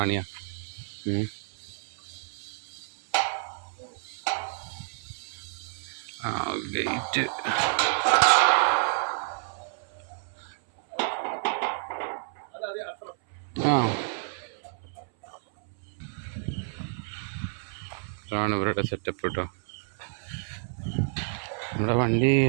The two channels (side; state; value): left; silent; 58 dB below the other